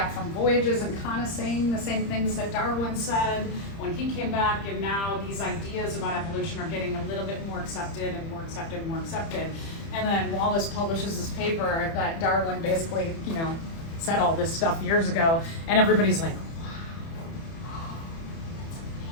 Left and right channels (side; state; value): right; late; 30 ms